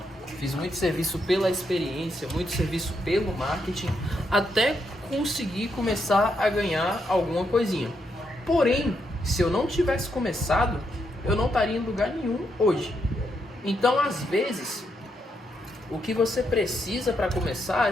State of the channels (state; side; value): normal; both; correlation 0.79